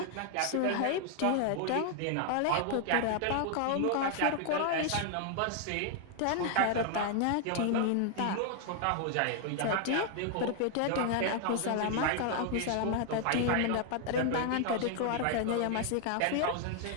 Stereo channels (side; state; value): both; different; correlation 0.00